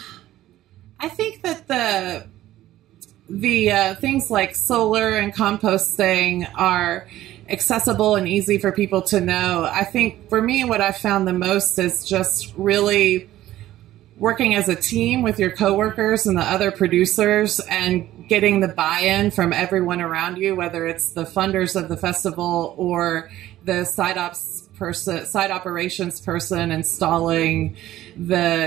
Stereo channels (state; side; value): quieter; left; 14.4 dB